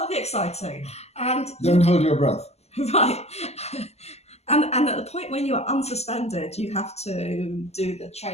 be exciting. And don't hold your breath. Right. And at the point when you are unsuspended, you have to do the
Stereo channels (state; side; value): late; right; 0.30 ms